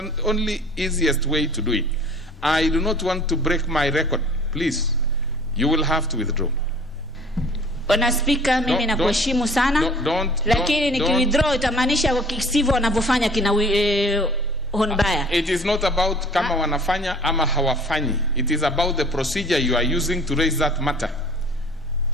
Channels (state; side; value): normal; both; correlation 0.49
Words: only easiest way to do it. I do not want to break my record. Please, you will have to withdraw. Bwana Speaker, mimi nakuheshimu sana, lakini nikiwithdraw itamaanisha kisivyo wanavyofanya kina Honbaya. It is not about kama wanafanya ama hawafanyi. It is about the procedure you are using to raise that matter.